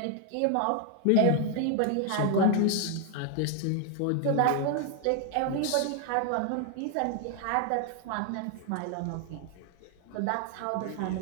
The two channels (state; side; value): different; both; correlation 0.00